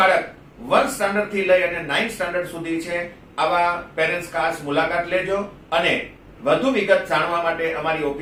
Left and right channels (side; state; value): both; identical; correlation 1.00